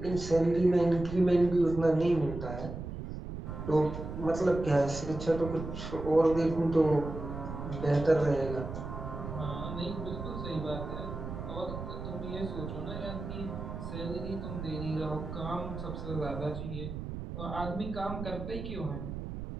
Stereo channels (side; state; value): right; noise; rumble, 7 dB below the sound